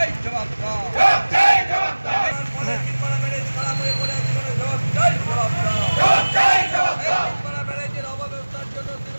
জবাব দাও। তিলপাড়া ব্যারেজ খারাপ হয়ে পড়ে আছে, জবাব চাই, জবাব দাও। তিলপাড়া ব্যারেজের অব্যবস্থার জন্য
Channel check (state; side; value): inverted; both; correlation -1.00